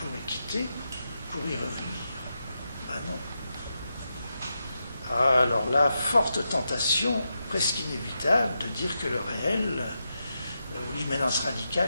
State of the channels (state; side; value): inverted; both; correlation -0.86